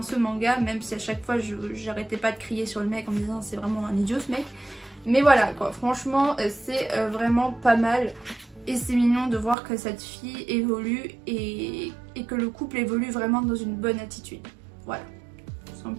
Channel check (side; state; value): left; drops out; at 9.6 s